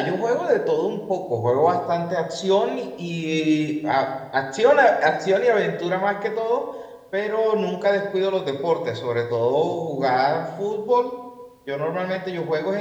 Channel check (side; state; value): both; identical; correlation 1.00